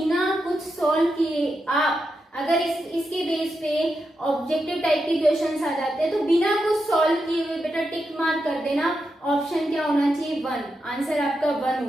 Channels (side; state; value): both; normal; correlation 0.86